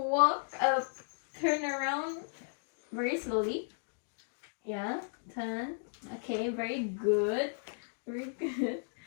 up, turn around very slowly. Yeah, turn. Okay, very good. Very good.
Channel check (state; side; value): silent; right; digital silence